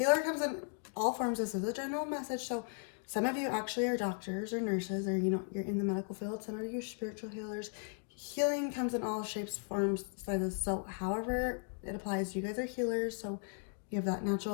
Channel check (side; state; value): right; silent; 53 dB below the other